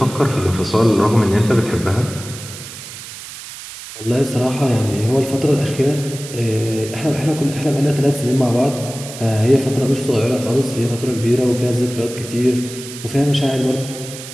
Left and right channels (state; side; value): noise; right; hiss, 13 dB below the sound